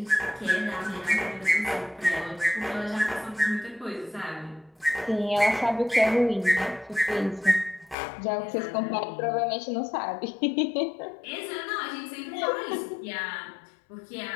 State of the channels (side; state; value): right; drops out; at 8.0 s